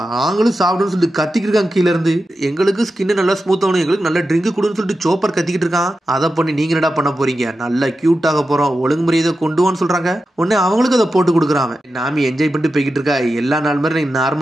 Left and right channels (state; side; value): normal; both; correlation 0.91